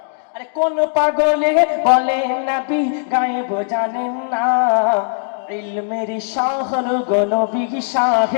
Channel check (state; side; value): silent; right; digital silence